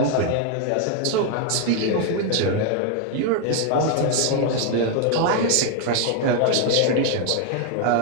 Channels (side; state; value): both; different; correlation 0.01